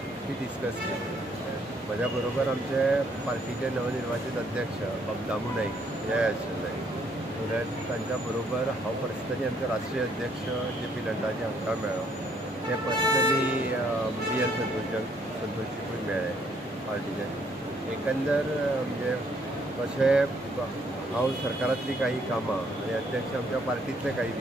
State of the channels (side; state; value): both; normal; correlation 0.68